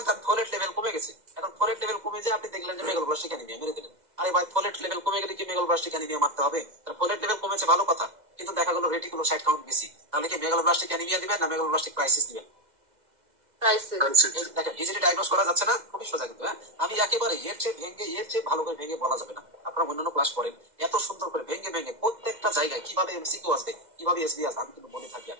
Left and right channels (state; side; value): late; left; 2.1 ms